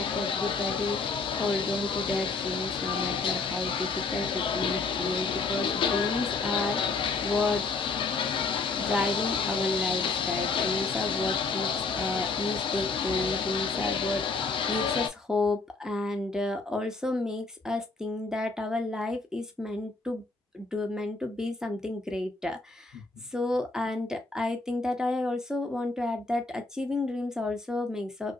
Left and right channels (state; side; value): quieter; right; 3.8 dB